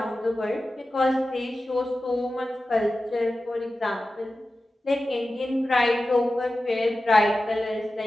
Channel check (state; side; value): normal; both; correlation 0.94